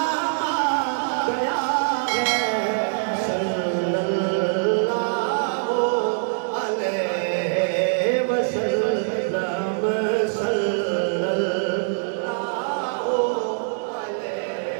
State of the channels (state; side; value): silent; left; digital silence